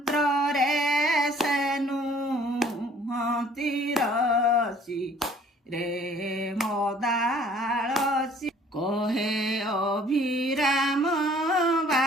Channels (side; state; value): both; normal; correlation 0.56